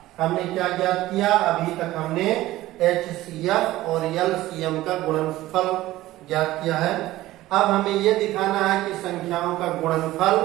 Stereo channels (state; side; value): quieter; left; 16.3 dB